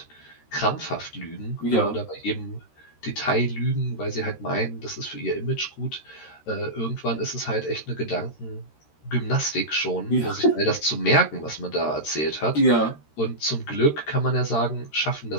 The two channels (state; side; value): late; right; 13 ms